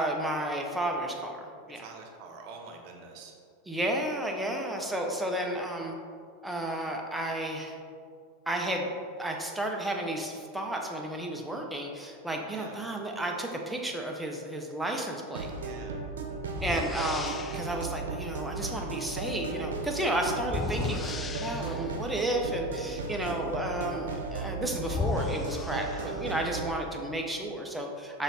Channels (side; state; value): both; normal; correlation 0.34